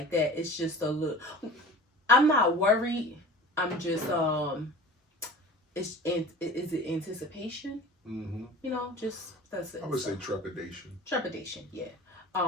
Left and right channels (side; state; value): both; normal; correlation 0.40